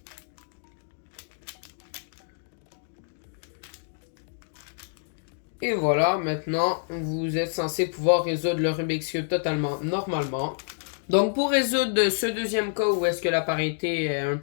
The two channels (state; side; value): silent; right; digital silence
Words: Et voilà, maintenant, vous êtes censé pouvoir résoudre le Rubik's Cube totalement normalement. Donc, pour résoudre ce deuxième cas où est-ce que la parité est un